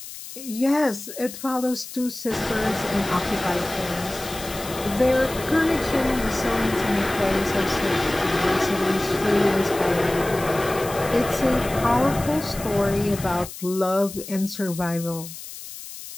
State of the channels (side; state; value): left; noise; hiss, 12 dB below the sound